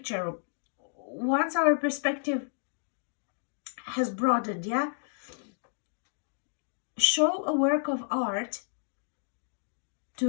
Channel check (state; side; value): silent; right; digital silence